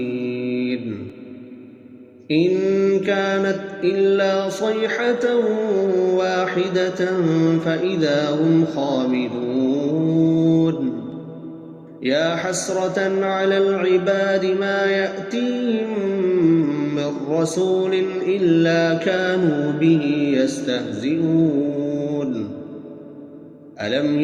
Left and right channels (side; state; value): both; identical; correlation 1.00